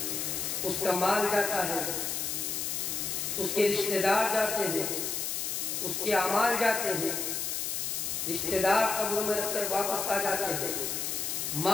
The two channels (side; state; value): left; noise; hiss, 1 dB below the sound